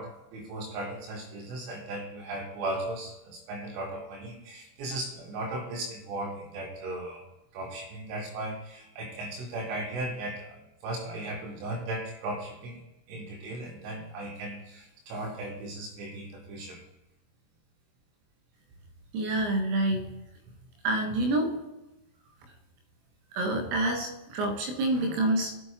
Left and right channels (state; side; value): late; left; 24 ms